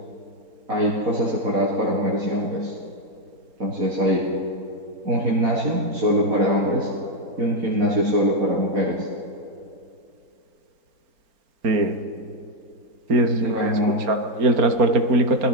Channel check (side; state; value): left; late; 4.3 ms